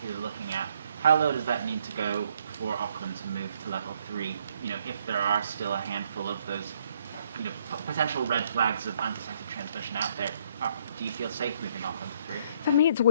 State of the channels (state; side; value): inverted; both; correlation -0.69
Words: looking at, how low does that need to go for Auckland to move to level 3? If there are still a handful of those, potential red flags of undetected transmission out there, do you feel safe moving Auckland to 3? For me, it's